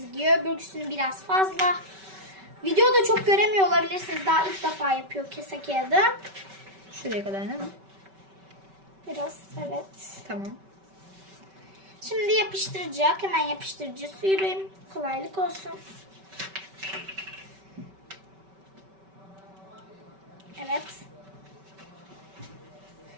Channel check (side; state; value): left; late; 5.2 ms